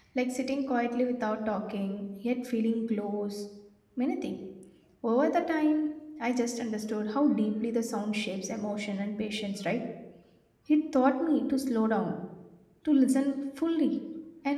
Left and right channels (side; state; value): both; identical; correlation 1.00